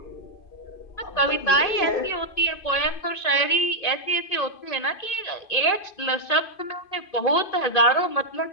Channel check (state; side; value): late; right; 2.5 ms